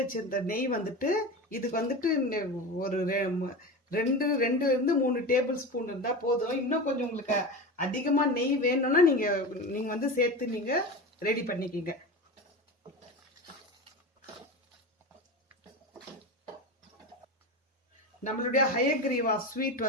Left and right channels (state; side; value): normal; both; correlation 0.26